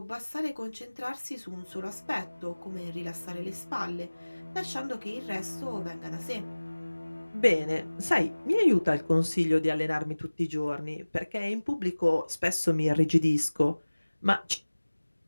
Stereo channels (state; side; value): inverted; both; correlation -1.00